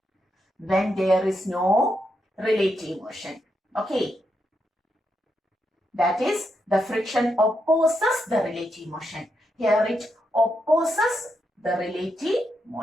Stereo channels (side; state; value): both; normal; correlation 0.82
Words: relative motion. Okay. That is, the friction opposes the relative motion. Here it opposes the relative